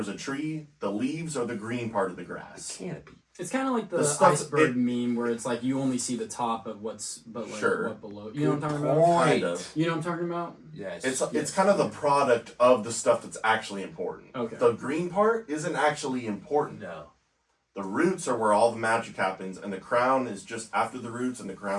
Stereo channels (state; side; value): identical; both; correlation 1.00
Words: a tree, the leaves are the green part of the grass. Canopy. It's kind of like the, The stuff- iceberg meme where it's like you only see the top of what's, but like Sure. what below. You know what I'm talking about? Point. Kind of. You know what I'm talking about? Yes. It's kind of the product of the stuff that's actually important. Okay. The green part isn't actually important. No. The roots are where all the magic happens, and the crown is just after the roots, and the